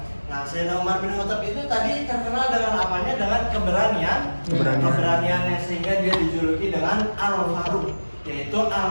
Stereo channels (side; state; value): both; inverted; correlation -1.00